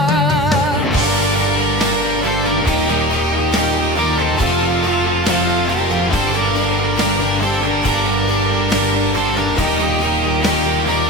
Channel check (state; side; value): normal; both; correlation 0.34